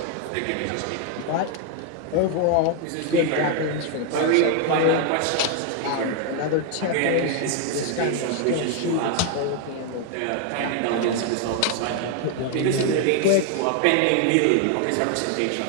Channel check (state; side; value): different; both; correlation 0.00